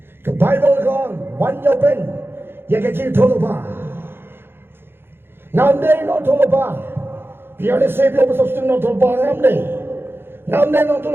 ke Bible kan banyoben ya kejik toloba nande no toloba Biar saya biar bersosting nonton barang ni, ngamde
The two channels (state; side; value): late; left; 0.11 ms